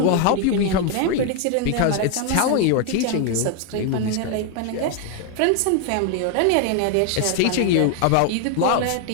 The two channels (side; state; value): both; different; correlation 0.00